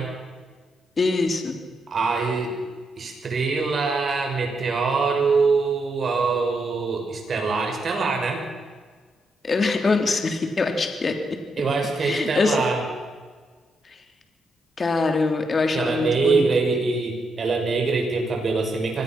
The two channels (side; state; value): both; normal; correlation 0.80